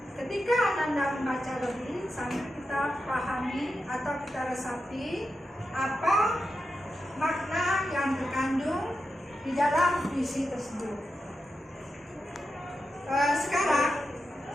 Ketika Ananda membaca lebih, sambil kita pahami atau kita resapi apa makna yang terkandung di dalam puisi tersebut. Sekarang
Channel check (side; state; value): both; normal; correlation 0.89